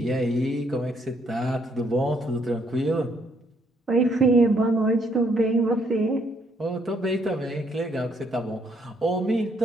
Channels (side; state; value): both; normal; correlation 0.70